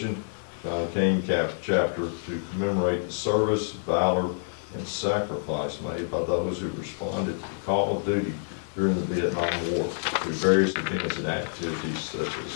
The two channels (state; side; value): silent; right; 57 dB below the other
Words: John Kane chapter, to commemorate the service, valor, and sacrifice made by those who responded to the call of duty during the Vietnam War through various events and activities such